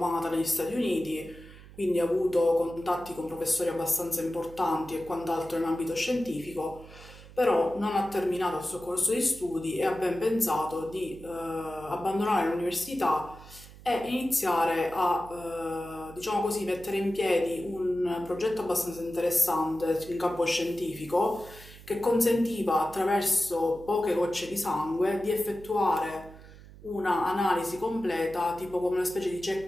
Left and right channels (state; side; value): noise; right; hum, 19 dB below the sound